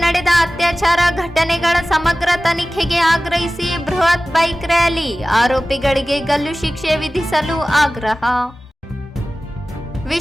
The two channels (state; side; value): normal; both; correlation 0.97